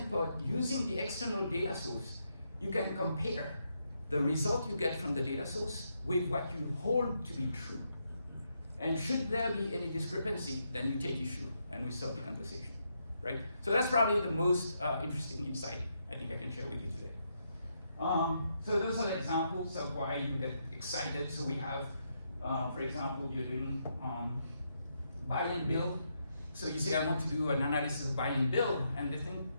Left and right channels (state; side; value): inverted; both; correlation -0.80